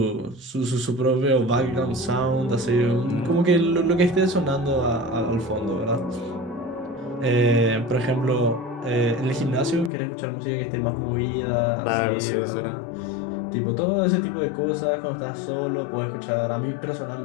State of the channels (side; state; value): right; drops out; at 9.9 s